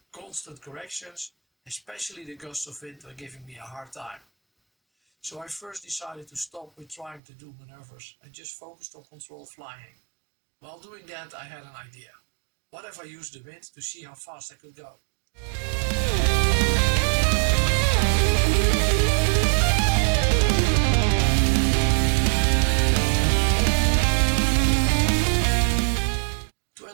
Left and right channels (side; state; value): left; drops out; at 7.2 s